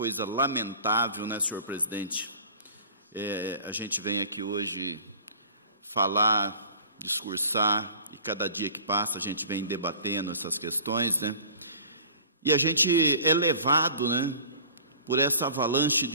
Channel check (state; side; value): inverted; both; correlation -0.44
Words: lamentável, né, senhor presidente? A gente vem aqui hoje falar, discursar, e cada dia que passa a gente vem debatendo essas questões, né? E a gente é levado, né, por essa avalanche